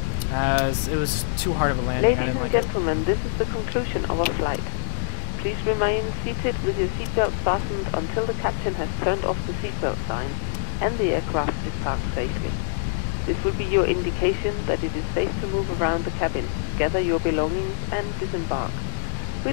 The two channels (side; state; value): right; silent; digital silence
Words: As it was too hard of a landing, I didn't like it. Ladies and gentlemen, this is the conclusion of our flight. Please remain seated with your seatbelt fastened until the captain has turned off the seatbelt sign and the aircraft is parked safely. This will be your indication that it is safe to move around the cabin, gather your belongings and disembark.